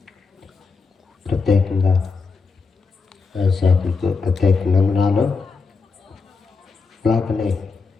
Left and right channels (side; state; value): right; quieter; 4.7 dB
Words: ప్రత్యేకంగా దైవసేవకులకు ప్రత్యేక వందనాలు. అలాగనే